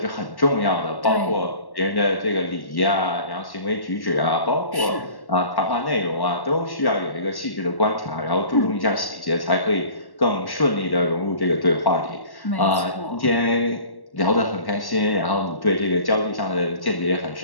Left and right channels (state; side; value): late; right; 1.1 ms